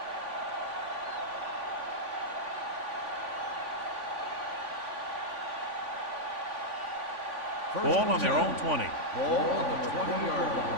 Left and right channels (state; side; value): late; left; 3.5 ms